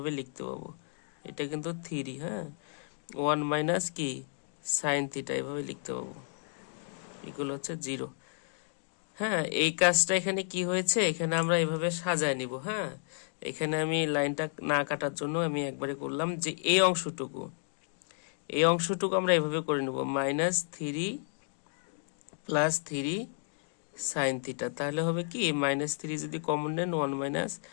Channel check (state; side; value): silent; right; digital silence